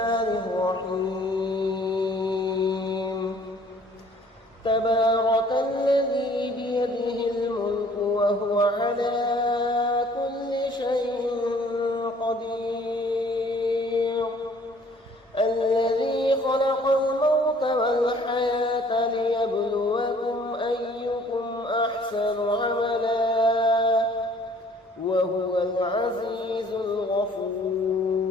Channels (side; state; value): both; normal; correlation 0.56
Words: الرحيم. تبارك الذي بيده الملك وهو على كل شيء قدير. الذي خلق الموت والحياة ليبلوكم أيكم أحسن عملا وهو العزيز الغفور.